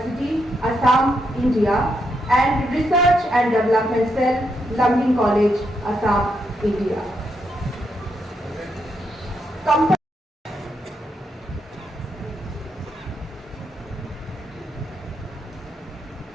Assam, India, and Research and Development Cell, Lumpin College, Assam, India.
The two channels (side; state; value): both; normal; correlation 0.80